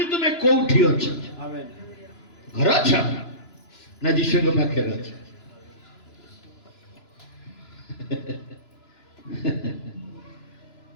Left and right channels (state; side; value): late; right; 3.0 ms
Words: ତୁମେ କୋଉଠି ଅଛ? ଘର ଅଛ ନା ଯୀଶୁଙ୍କ ପାଖରେ ଅଛ?